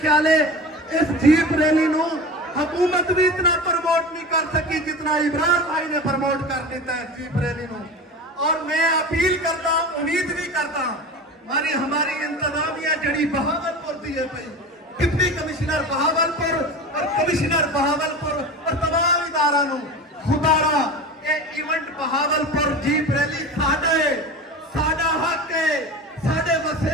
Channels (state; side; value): normal; both; correlation 0.31